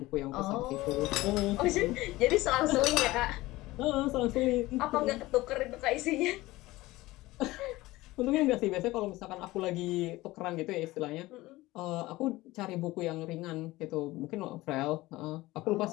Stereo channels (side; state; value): right; quieter; 18.7 dB